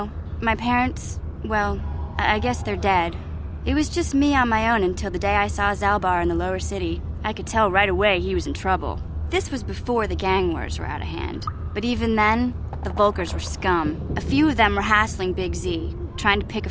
My parents, well, I guess they're dead. It was just me on my own until the day I saw Zaalbar in the lower city. I could tell right away he was in trouble. This was before the gang wars were out of hand. But even then, the Volkers were scum. A few of them were hassling Big Z, trying to pick a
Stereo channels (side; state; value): both; identical; correlation 1.00